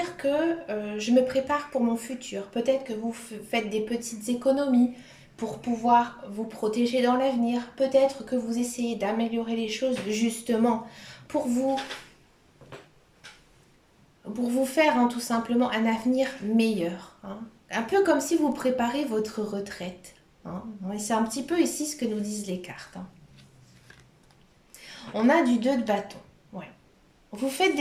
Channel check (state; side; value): identical; both; correlation 1.00